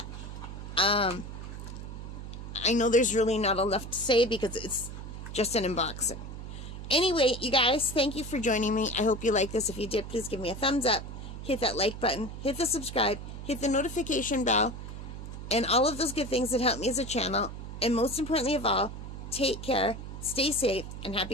I know there's really not enough to say because it's just an unboxing. Anyway, you guys, thank you for joining me. I hope you like this. If you did, please give me a thumbs up. Hit that like button. Hit the subscribe. Hit the notification bell. And all of those good things that help me as a channel. And most importantly of all, take care, stay safe, and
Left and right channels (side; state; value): right; noise; hum, 9 dB below the sound